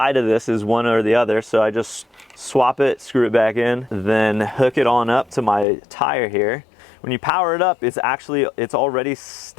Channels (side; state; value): right; drops out; at 5.7 s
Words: of this is one or the other, so I just swap it, screw it back in, then hook it on up to my tire here. When you power it up, it's already